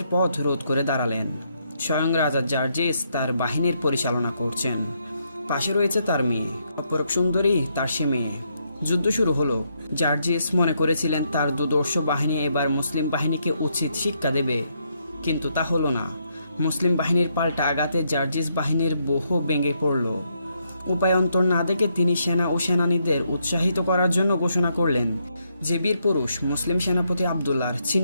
পথ রোধ করে দাঁড়ালেন। স্বয়ং রাজা জার্জিস তার বাহিনীর পরিচালনা করছেন। পাশে রয়েছে তার মেয়ে, অপরূপ সুন্দরী তার সে মেয়ে। যুদ্ধ শুরু হলো। জার্জিস মনে করেছিলেন তার দুর্ধর্ষ বাহিনী এবার মুসলিম বাহিনীকে উচিত শিক্ষা দেবে, কিন্তু তা হলো না। মুসলিম বাহিনীর পাল্টা আঘাতে জার্জিস বাহিনীর বহু ভেঙে পড়ল। উপায়ন্তর না দেখে তিনি সেনা ও সেনানীদের উৎসাহিত করার জন্য ঘোষণা করলেন, যে বীর পুরুষ মুসলিম সেনাপতি আবদুল্লাহর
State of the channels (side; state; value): both; inverted; correlation -0.76